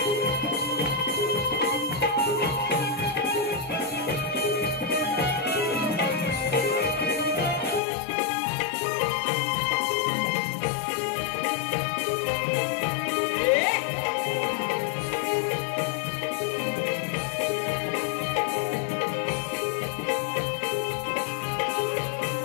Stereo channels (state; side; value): drops out; right; at 7.8 s